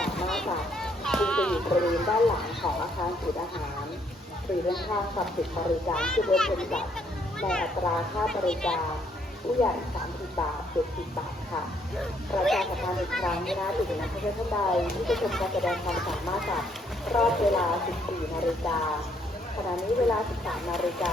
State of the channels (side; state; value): both; normal; correlation 0.69